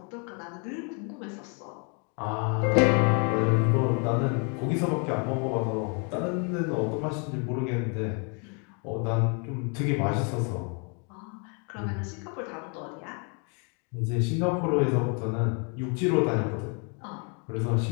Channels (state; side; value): quieter; right; 36.9 dB